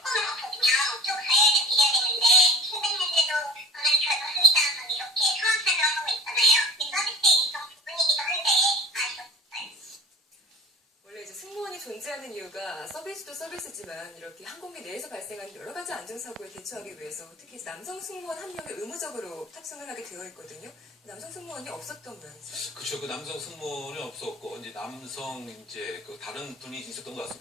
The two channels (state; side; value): normal; both; correlation 0.44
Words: 없거든요. 쭉 드려야 되는데 힘든데도 오늘 결박합니다라고 이렇게 상황 설명하고 있잖아요. 서비스의 일종 부분이기도 한데 아쉬웠어요. 원래 이제 승무원이 존재하는 이유가 서비스도 서비스지만 이렇게 항공기 내에서 발생하는 여러 가지 안전사고에 대처하기 위해서 특히 남성 승무원 한 명이 의무적으로 탑승을 하게 되어 있거든요. 남성 승무원이 없었던 모양이죠. 그렇죠. 그 남성 승무원이 없었고 이제 남성 이제 그 다른 분이 있었던 것